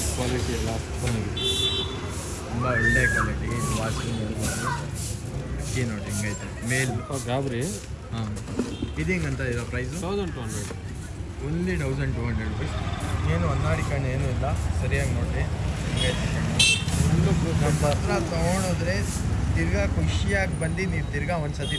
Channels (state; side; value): identical; both; correlation 1.00